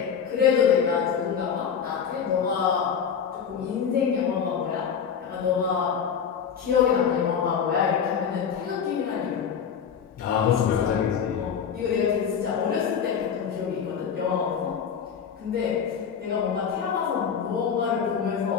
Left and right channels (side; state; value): right; quieter; 7.3 dB